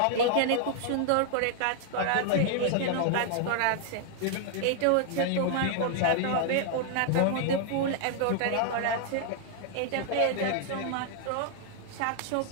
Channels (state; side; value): different; both; correlation 0.00